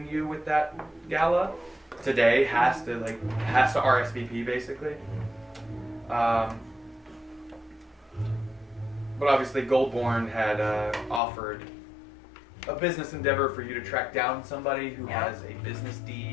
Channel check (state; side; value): drops out; right; at 11.2 s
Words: you with that gala today has to RSVP basically. But obviously Goldborn had offered a business endeavor for you to track down somebody who has a business